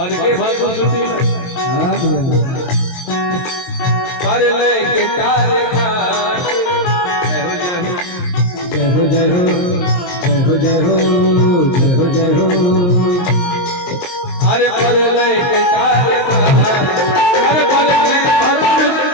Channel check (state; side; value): late; right; 23 ms